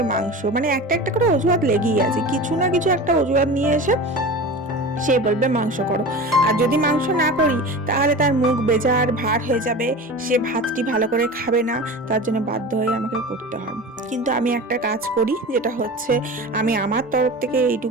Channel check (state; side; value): normal; both; correlation 0.32